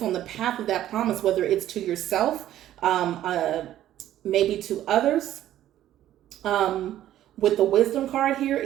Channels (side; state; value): left; quieter; 12.6 dB